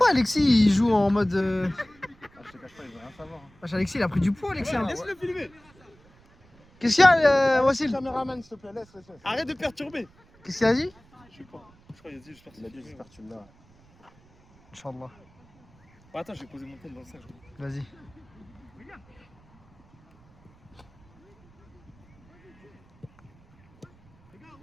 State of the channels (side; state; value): right; noise; rumble, 29 dB below the sound